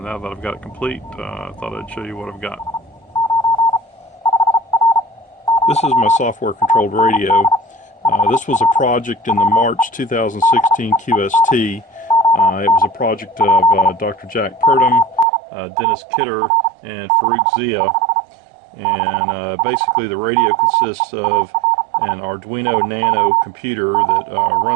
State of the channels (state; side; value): drops out; left; at 15.2 s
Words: that I've got it complete, I thought I'd show you what I've got. This is my software-controlled radio. This was a project in the March 2016 QST. It was a project of Dr. Jack Purdum, Dennis Kidder, and Farrukh Zia. And basically the radio consists of an Arduino Nano computer that